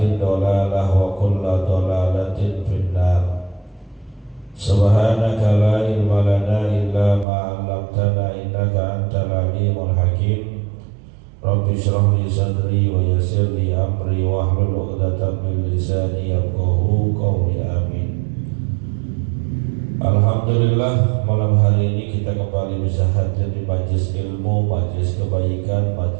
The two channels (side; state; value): left; drops out; at 7.2 s